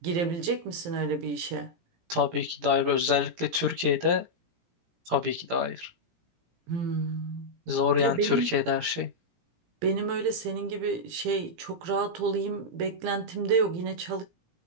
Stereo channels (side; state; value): left; late; 17 ms